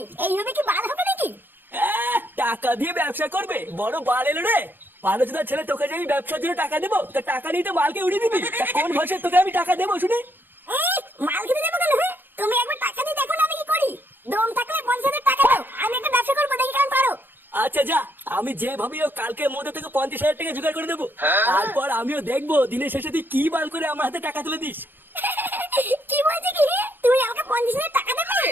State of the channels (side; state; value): left; late; 0.095 ms